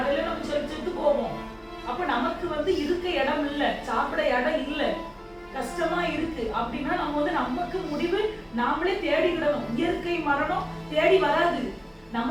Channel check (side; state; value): both; identical; correlation 1.00